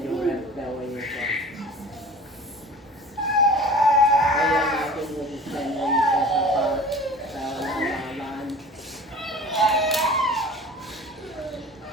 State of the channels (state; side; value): normal; both; correlation 0.41